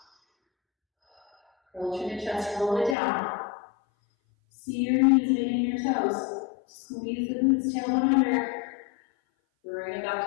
Curl to the chest, roll it down. See your knees meeting your toes. Squeeze the glutes, tailbone under. Bring it back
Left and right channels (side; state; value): right; drops out; at 3.0 s